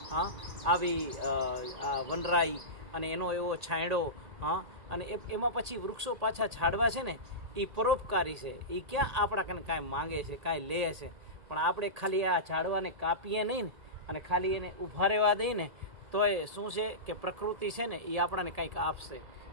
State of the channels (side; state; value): left; late; 2.0 ms